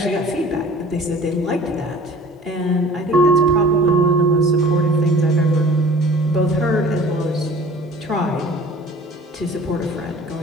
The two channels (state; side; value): normal; both; correlation 0.46